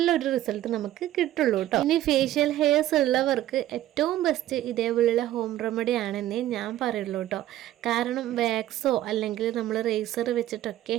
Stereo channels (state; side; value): quieter; left; 13.6 dB